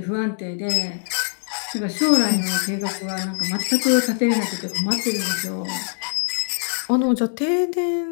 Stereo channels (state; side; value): silent; right; digital silence